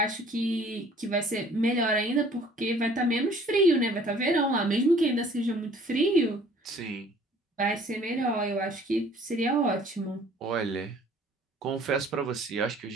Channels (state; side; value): normal; both; correlation 0.54